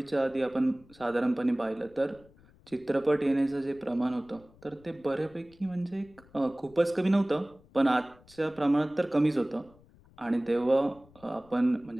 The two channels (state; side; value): noise; left; rumble, 27 dB below the sound